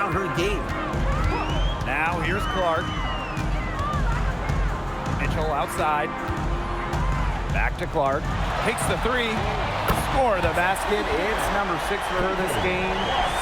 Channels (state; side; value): identical; both; correlation 1.00